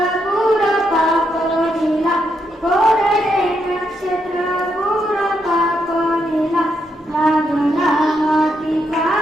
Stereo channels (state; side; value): normal; both; correlation 0.79